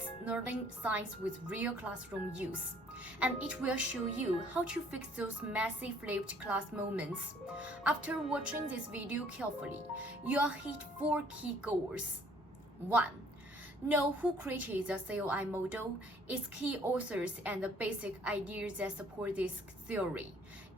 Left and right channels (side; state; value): both; normal; correlation 0.59